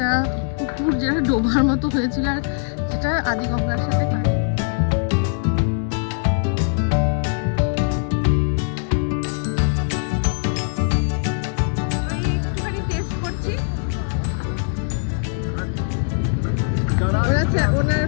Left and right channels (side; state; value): right; silent; digital silence